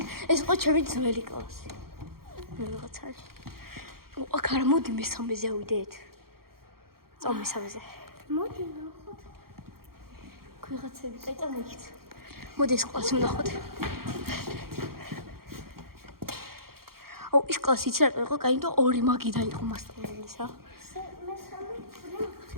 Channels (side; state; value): left; late; 0.93 ms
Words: ეს იყო ჩემი ძველი კლასი. ვიღაცა არის. აქ არა, მოდი მესამეზე ავიდეთ. წავ მესამეზე. მოდი ნახოთ. ვიღაცები, კაი, წამოიქით. მოდი ეს კლასი ვნახოთ. აუ, ის კლასი იცი რა იყო? კაი, იმიტომ ორი მაგი დაიყო მასწავლებლის რა.